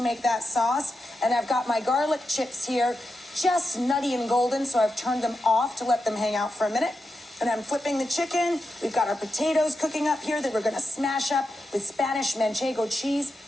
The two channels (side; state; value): both; normal; correlation 0.88